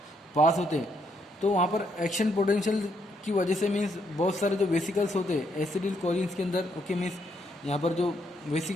पास होते हैं तो वहाँ पर एक्शन पोटेंशियल की वजह से मीन्स बहुत सारे जो वेसिकल्स होते हैं एसिडिल कोलिन्स के अंदर। ओके, मीन्स यहाँ पर जो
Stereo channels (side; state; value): both; normal; correlation 0.74